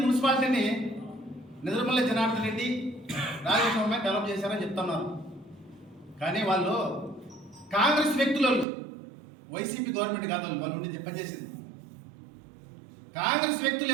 మున్సిపాలిటీని నిద్రమల్లి జనార్దన్ రెడ్డి రాజస్వామి డెవలప్ చేశారని చెప్తున్నారు. కానీ వాళ్ళు కాంగ్రెస్ వ్యక్తులు, వైసీపీ గవర్నమెంట్ కాదు వాళ్ళు ఉండి పనిచేసింది. కాంగ్రెస్ వ్యక్తులు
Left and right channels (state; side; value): drops out; left; at 8.7 s